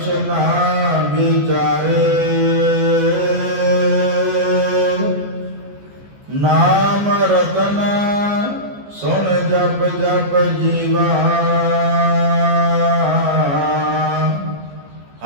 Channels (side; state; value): left; late; 14 ms